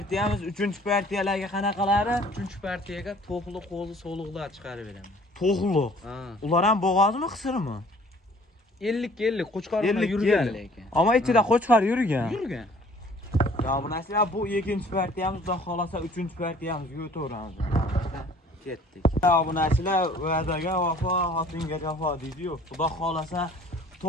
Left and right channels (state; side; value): normal; both; correlation 0.53